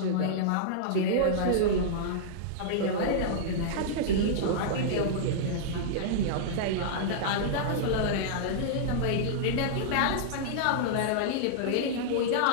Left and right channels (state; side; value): different; both; correlation -0.02